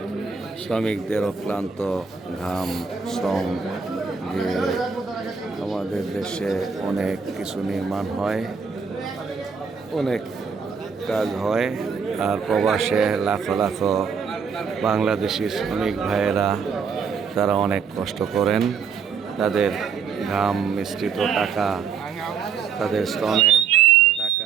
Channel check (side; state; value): left; quieter; 6.1 dB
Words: শ্রমিকদের অক্লান্ত ঘাম শ্রম দিয়ে আমাদের দেশে অনেক কিছু নির্মাণ হয়, অনেক কাজ হয়। আর প্রবাসে লাখো লাখো বাংলাদেশি শ্রমিক ভাইয়েরা তারা অনেক কষ্ট করেন। তাদের ঘাম মিশ্রিত টাকা, তাদের শ্রমের টাকা